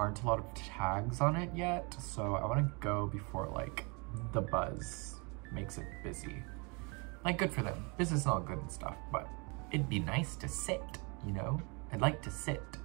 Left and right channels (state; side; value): quieter; left; 31.4 dB